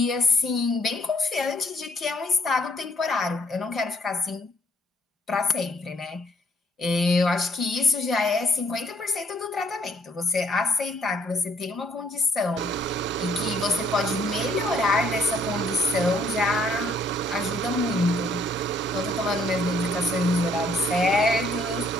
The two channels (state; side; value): normal; both; correlation 0.65